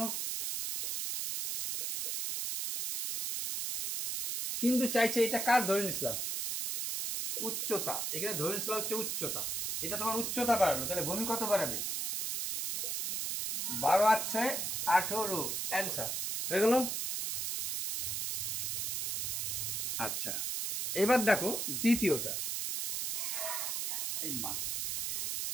কিন্তু চাইছে এটা কার ধরে নিছিলাম? উচ্চতা। এখানে ধরে নিছিলাম হচ্ছে উচ্চতা। এটা তোমার উচ্চতা বাড়ালো, তাহলে ভূমি কত বাড়াবে? 12 আর 6 18 অ্যান্সার হয়ে গেল। আচ্ছা, এবার দেখো দ্বিতীয়টা। এই মাস,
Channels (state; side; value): noise; right; hiss, 1 dB below the sound